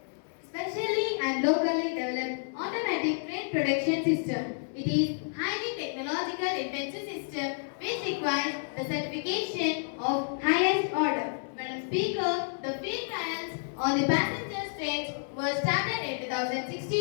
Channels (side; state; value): right; silent; digital silence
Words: specially and locally developed automatic train production system. It is highly technological intensive system which requires the certification of highest order. Madam Speaker, the field trials on the passenger trains were started in